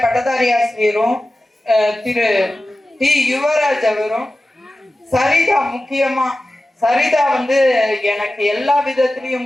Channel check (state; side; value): normal; both; correlation 0.95